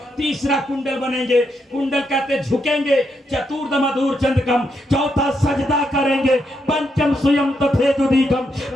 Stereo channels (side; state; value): both; normal; correlation 0.80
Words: तीसरा कुंडल बनेंगे। कुंडल कहते झुकेंगे। चतुर्थ मधुर चंद्रकम, चौथा सजदा करेंगे। पंचम स्वयं तथे जुदी,